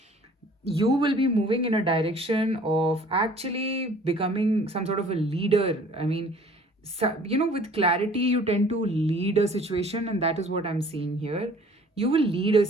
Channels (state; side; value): normal; both; correlation 0.52